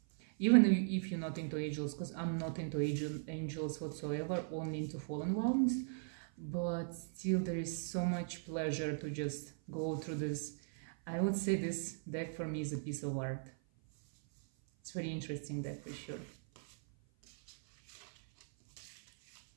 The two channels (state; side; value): silent; left; 52 dB below the other